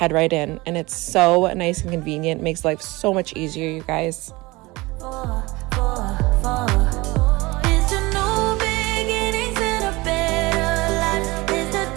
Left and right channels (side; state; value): left; quieter; 22.1 dB